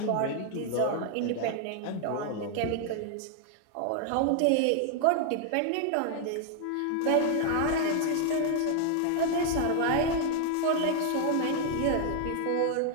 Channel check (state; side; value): different; both; correlation 0.00